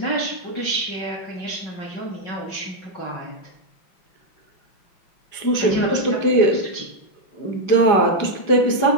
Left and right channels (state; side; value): late; right; 5.1 ms